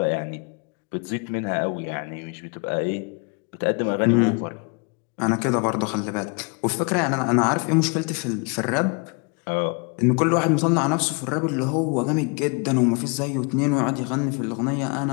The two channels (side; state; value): right; quieter; 33.6 dB